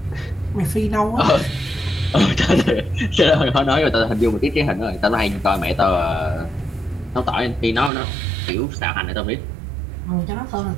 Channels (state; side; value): drops out; left; at 7.9 s